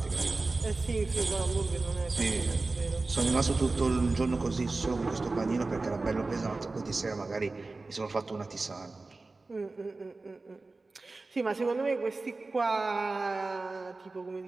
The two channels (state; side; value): quieter; left; 3.5 dB